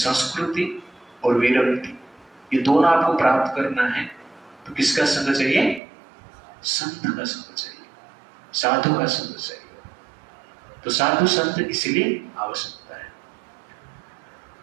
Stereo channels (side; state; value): left; drops out; at 5.8 s